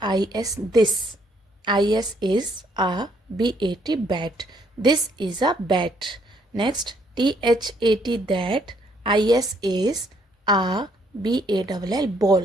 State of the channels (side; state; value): both; normal; correlation 0.68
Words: this. IS is a BAT bat. This is a bat. Next THAT that. IS is a BALL